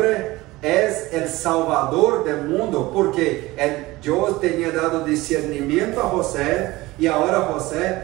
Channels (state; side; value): quieter; left; 19.7 dB